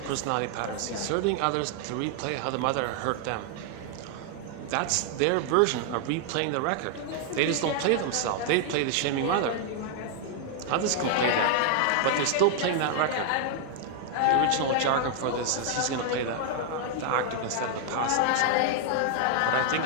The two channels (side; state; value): both; different; correlation 0.00